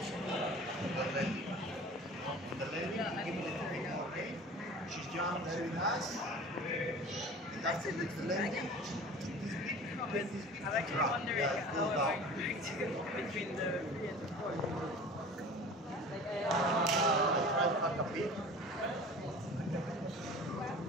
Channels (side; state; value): both; normal; correlation 0.41